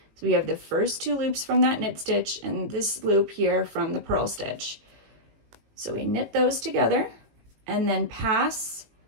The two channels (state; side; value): late; left; 18 ms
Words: So we have the first 2 loops from that knit stitch and this loop here from the purl stitch. So we knit those together and then pass